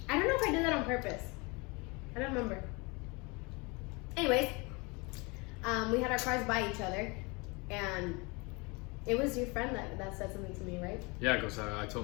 I don't know if I did that on purpose. I don't remember. Anyways, we had our cars by each other, and it was your friend that said something to me, right? Yeah, because I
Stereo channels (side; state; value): right; quieter; 27.9 dB